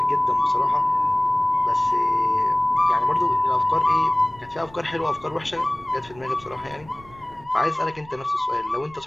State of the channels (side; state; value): right; noise; rumble, 24 dB below the sound